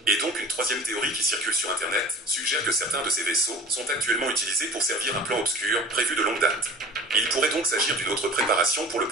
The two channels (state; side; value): normal; both; correlation 0.42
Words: Et donc une troisième théorie qui circule sur Internet suggère que certains de ces vaisseaux sont actuellement utilisés pour servir un plan obscur prévu de longue date. Il pourrait donc s'agir d'une autre préparation pour le